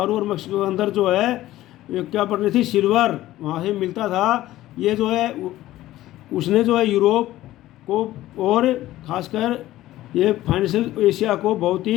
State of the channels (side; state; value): right; quieter; 15.3 dB